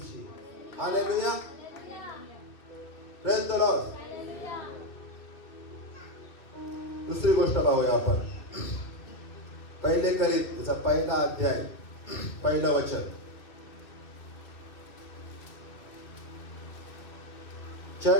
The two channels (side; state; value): right; late; 2.6 ms